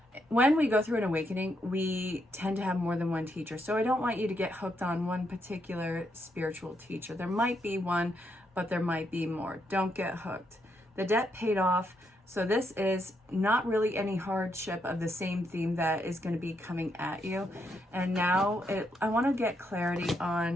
when we go through an awakening, we tend to have more than one teacher. So I don't want you to get hooked on one particular spiritual teacher. There might be one, but there might be more. Don't get hooked. The debt paid off. So this is not really any hardship of the same theme that is going to be coming at you. And now I want to get clarity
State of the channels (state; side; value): normal; both; correlation 0.78